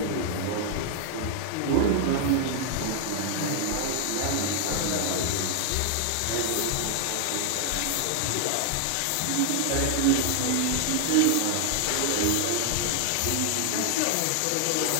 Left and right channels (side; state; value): both; different; correlation 0.00